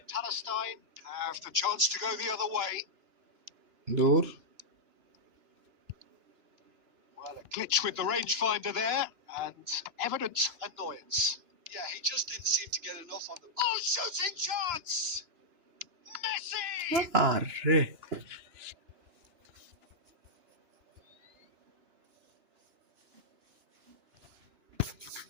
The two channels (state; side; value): late; left; 2.9 ms